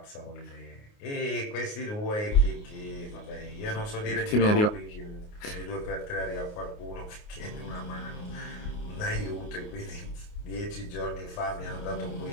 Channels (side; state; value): right; late; 28 ms